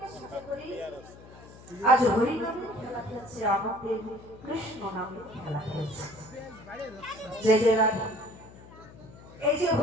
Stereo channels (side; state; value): left; noise; hum, 19 dB below the sound